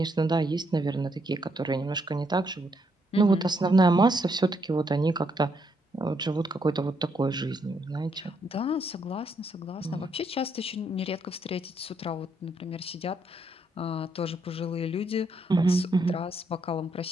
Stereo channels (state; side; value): normal; both; correlation 0.75